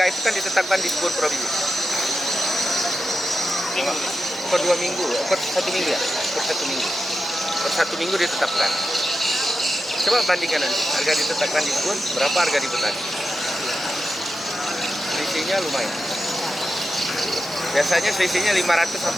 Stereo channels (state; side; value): normal; both; correlation 0.90